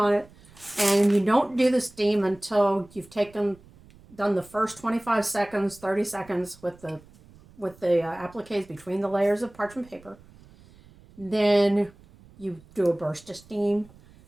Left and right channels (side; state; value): right; noise; rumble, 25 dB below the sound